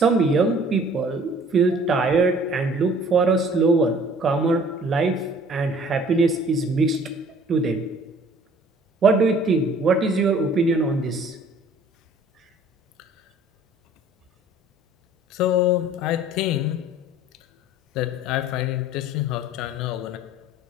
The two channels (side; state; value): both; normal; correlation 0.52